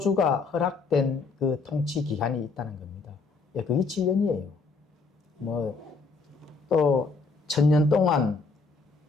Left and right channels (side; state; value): right; quieter; 4.2 dB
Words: 허락된 그 통치 기간이 있다는 겁니다. 그게 7년이에요. 뭐 또 1000년 동안